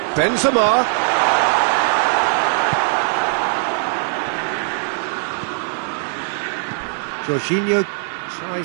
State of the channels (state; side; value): silent; left; 66 dB below the other